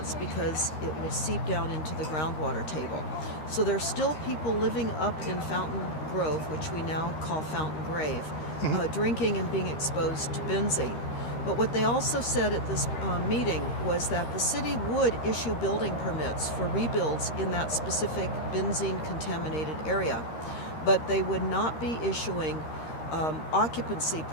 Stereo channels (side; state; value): right; late; 13 ms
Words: because it will seep down into the groundwater table. So there's still people living up in Fountain Grove, which we now call Fountain Grave, drinking and being exposed to benzene. But what they also said at this meeting was that the city would issue building permits for rebuilds in that specific benzene-contaminated area, but they would not be issuing occupancy